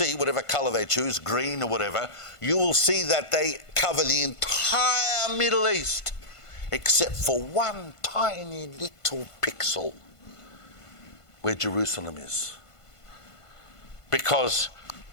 whatever color they choose, green or whatever, you will see that they cover the entire Middle East, except for one tiny little pixel where Jerusalem is. Because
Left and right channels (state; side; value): late; right; 1.5 ms